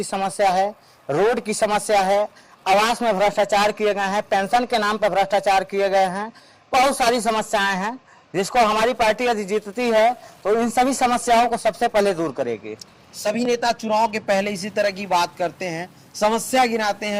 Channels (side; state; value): both; identical; correlation 1.00